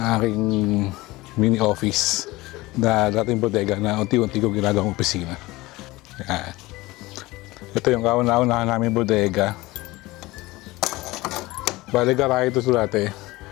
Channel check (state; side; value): quieter; right; 20.1 dB